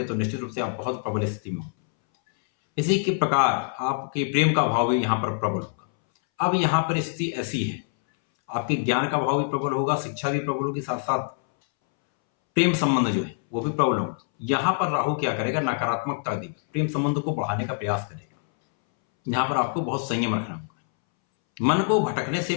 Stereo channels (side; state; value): right; silent; 62 dB below the other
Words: तो निश्चित रूप से आप बहुत प्रबल स्थिति में होंगे। इसी के प्रकार आपके प्रेम का भाव भी यहाँ पर प्रबल होगा। अब यहाँ पर स्थिति ऐसी है, आपके ज्ञान का भाव भी प्रबल होगा, शिक्षा भी प्रबल होगी, साथ साथ प्रेम संबंध जो है वो भी प्रबल होगा। यहाँ पर राहु क्या करेगा, नकारात्मकता देगा, प्रेम संबंध को बढ़ाने का प्रयास करेगा। यहाँ पर आपको बहुत संयम रखना होगा, मन को भटकने से